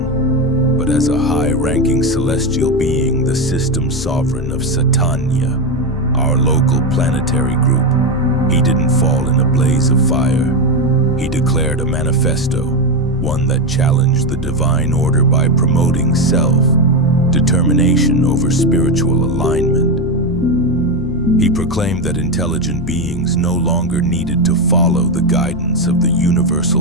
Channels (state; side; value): normal; both; correlation 0.11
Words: but as a high-ranking celestial being, the system sovereign of Satania, our local planetary group. He didn't fall in a blaze of fire. He declared a manifesto, one that challenged the divine order by promoting self-determination over spiritual alignment. He proclaimed that intelligent beings no longer needed to follow the guidance of the